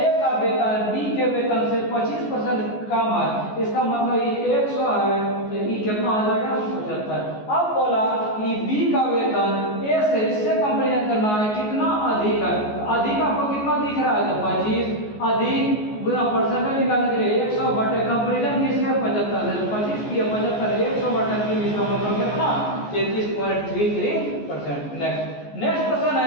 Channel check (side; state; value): right; late; 14 ms